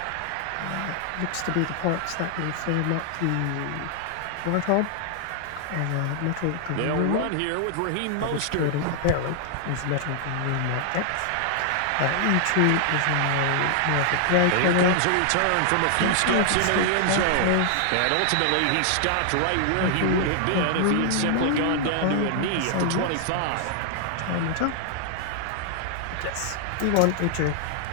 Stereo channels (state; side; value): different; both; correlation 0.00